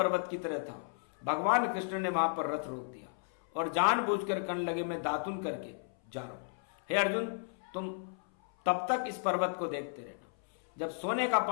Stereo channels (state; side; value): silent; right; 55 dB below the other